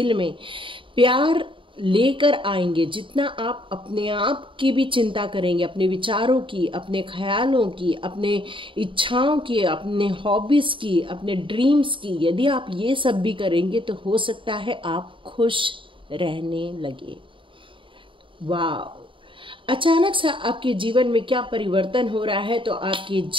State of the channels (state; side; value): late; left; 0.25 ms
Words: में प्यार लेकर आएंगे, जितना आप अपने आप की भी चिंता करेंगे, अपने विचारों की, अपने ख्यालों की, अपने इच्छाओं की, अपने हॉबीज़ की, अपने ड्रीम्स की, यदि आप ये सब भी करेंगे तो हो सकता है आप खुश रहने लगे। वाह, अचानक से आपके जीवन में क्या परिवर्तन हो रहा है। तो आपके